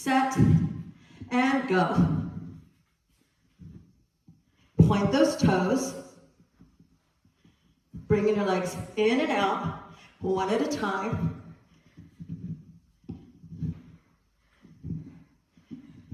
and go. Point those toes. Bringing your legs in and out, one at a time.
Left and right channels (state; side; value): identical; both; correlation 1.00